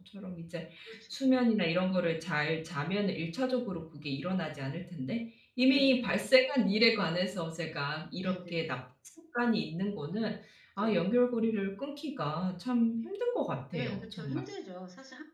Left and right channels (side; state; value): both; identical; correlation 1.00